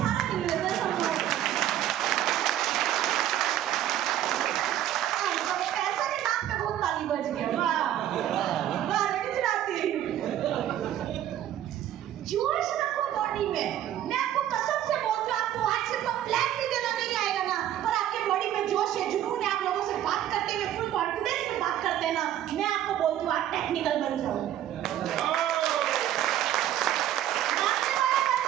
गिन लेते हैं सब लोग। पैसा के नाम पे बहुत ताली बज गया। वाह वाह गुजराती। जोश रखो बॉडी में। मैं आपको कसम से बोलती हूँ, आपको आज से तो प्लान भी देना नहीं आएगा ना, पर आपके बॉडी में जोश है, जुनून है, आप लोगों से बात करते हुए फुल कॉन्फिडेंस में बात करते हैं ना, मैं आपको बोलती हूँ आप टेक्निकल बन जाओ। मांगने वाला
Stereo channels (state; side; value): quieter; left; 11.7 dB